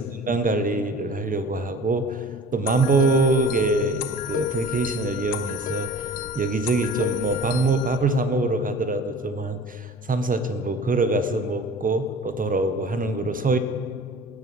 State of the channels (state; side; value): normal; both; correlation 0.42